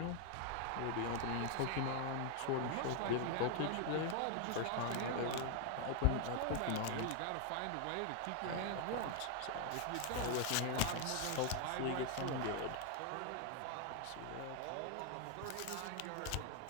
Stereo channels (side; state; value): both; different; correlation 0.00